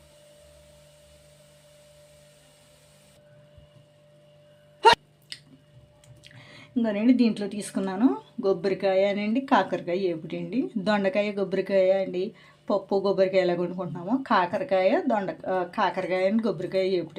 ఇంకోనండి దీంట్లో తీసుకున్నాను కొబ్బరికాయ అనండి, కాకరకాయ ఏపుటండి, దొండకాయ కొబ్బరికాయ అండి, పప్పు కొబ్బరికాయ ఎలా వండుకుంటున్నాము, కాకరకాయ అని కొబ్బరికాయ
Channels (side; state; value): both; identical; correlation 1.00